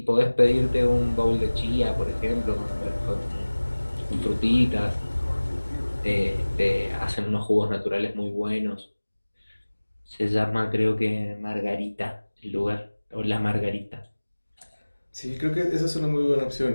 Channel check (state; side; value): inverted; both; correlation -1.00